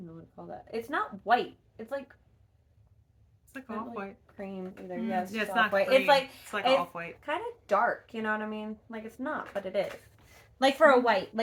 know what to call that. It's not white. It's like off white. Cream either. Yes, yeah, it's off white. Cream. It's like off white. Kind of dark. You know what I mean? Like it's not, but it is. Like for a white,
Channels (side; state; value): both; identical; correlation 1.00